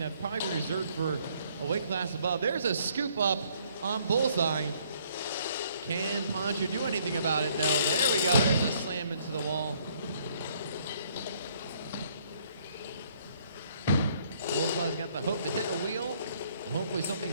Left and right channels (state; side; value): inverted; both; correlation -0.65